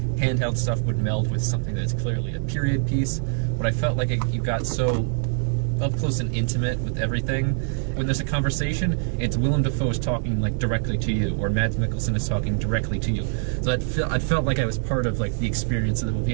handheld stuff would meld with something that's clearly a period piece, but I felt like you got so up close and intimate with everything. When there's a conversation, it's Willem Dafoe is talking like directly to you, or Mads Mikkelsen is talking directly to you. So I felt like I was part of like the experience of the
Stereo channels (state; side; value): silent; left; 62 dB below the other